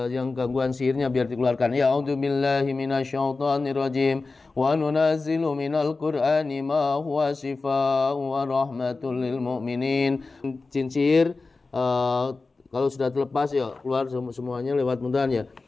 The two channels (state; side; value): quieter; right; 3.8 dB